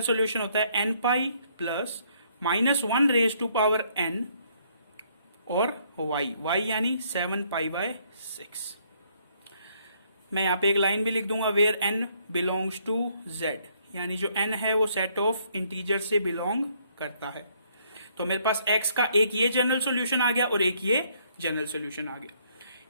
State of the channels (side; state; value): both; inverted; correlation -0.68